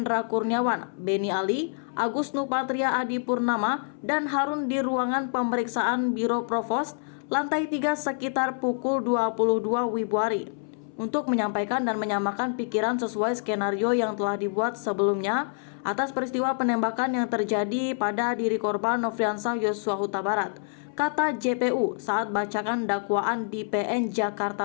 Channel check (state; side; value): silent; right; 60 dB below the other